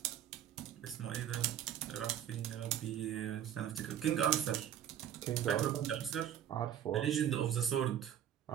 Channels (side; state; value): left; quieter; 10.1 dB